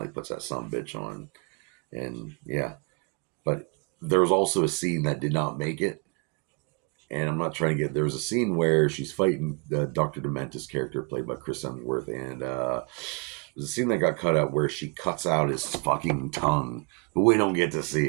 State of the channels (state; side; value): quieter; left; 33.4 dB